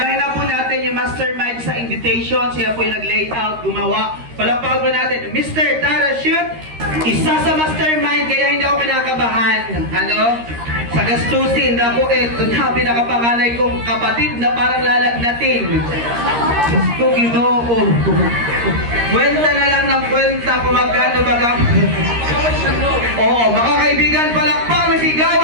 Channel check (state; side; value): late; left; 13 ms